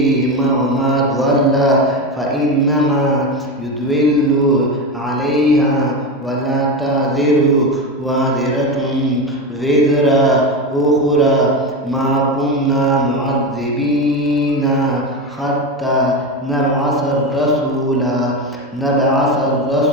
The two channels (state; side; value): normal; both; correlation 0.18